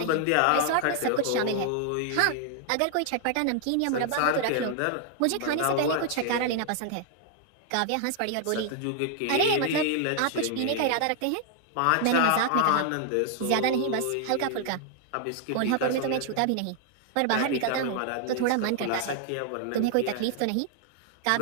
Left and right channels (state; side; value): different; both; correlation 0.00